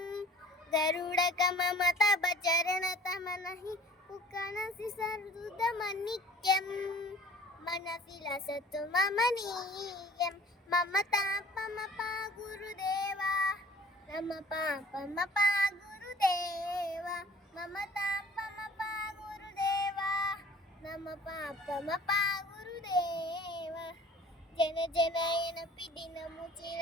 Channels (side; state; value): both; normal; correlation 0.50